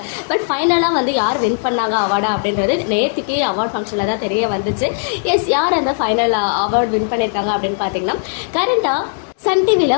பட் ஃபைனலாக வந்து யார் வின் பண்ணாங்க அவார்டா அப்படின்றது நேற்றுக்கே அவார்ட் ஃபங்க்ஷனில் தான் தெரிய வந்துச்சு. எஸ், யார் அந்த ஃபைனல் அவார்டு வின் பண்ணியிருக்காங்க அப்படின்னு பார்த்தீங்கன்னா கரண்டாக சன்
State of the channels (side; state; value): right; silent; digital silence